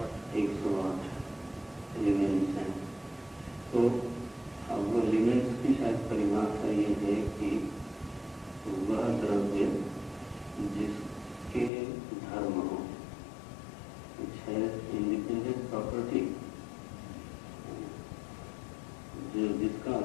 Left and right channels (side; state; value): right; drops out; at 11.7 s